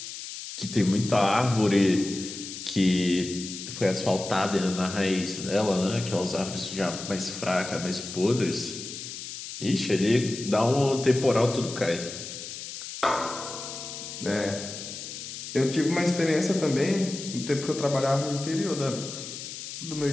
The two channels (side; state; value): left; noise; hiss, 9 dB below the sound